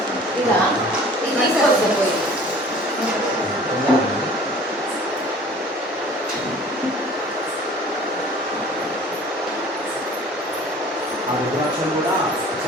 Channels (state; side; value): normal; both; correlation 0.47